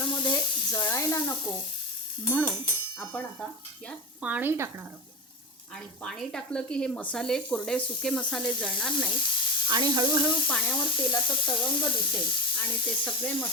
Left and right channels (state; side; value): normal; both; correlation 0.22